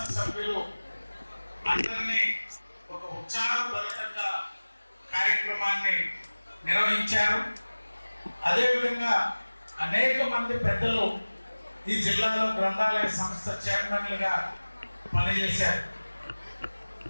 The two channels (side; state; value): both; inverted; correlation -1.00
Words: అందరినీ ఒక ఉత్సాహభరితంగా కార్యక్రమాన్ని నిర్వహించారు. అదేవిధంగా అనేక మంది పెద్దలు ఈ జిల్లాలో గ్రంథాలయ సంస్థ చైర్మన్లుగా పనిచేశారు.